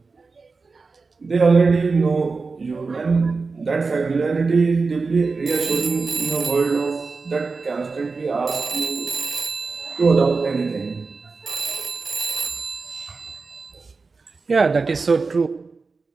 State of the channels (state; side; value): quieter; left; 4.3 dB